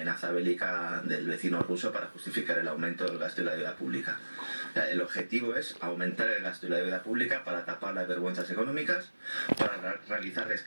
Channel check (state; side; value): inverted; both; correlation -1.00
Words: bélica del vecino ruso para justificar el aumento del gasto y la deuda pública. El objetivo es aumentar el gasto y la deuda pública para tapar las vergüenzas económicas, para realizar